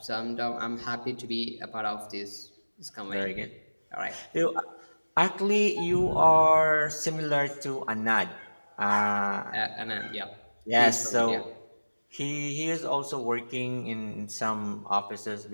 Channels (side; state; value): both; inverted; correlation -1.00